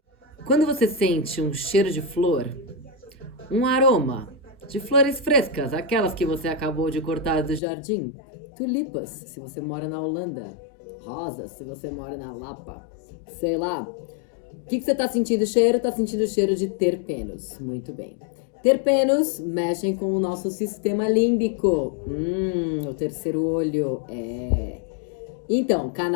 Quando você sente um cheiro de flor, um aroma de flores frescas, aquelas que você acabou de cortar do jardim, tulipas, se você mora na Holanda, rosas, se você mora na Lapa, sei lá. O que você tá sentindo cheiro? Tá sentindo cheiro de terpenos. Muito bem. Terpenos mexem com o nosso sistema límbico. O terceiro olho. Então,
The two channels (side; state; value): right; drops out; at 7.6 s